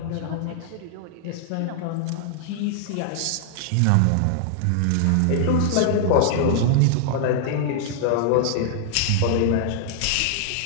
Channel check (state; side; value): different; both; correlation -0.01